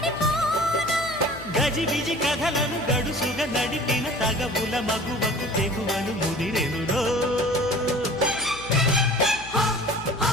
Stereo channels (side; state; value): left; noise; hum, 17 dB below the sound